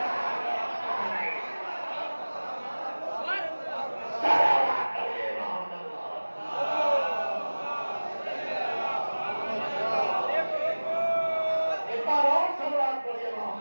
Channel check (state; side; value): inverted; both; correlation -1.00